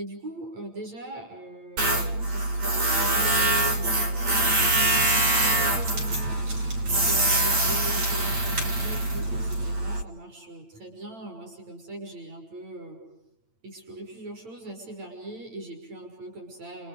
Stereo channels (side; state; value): left; late; 8.9 ms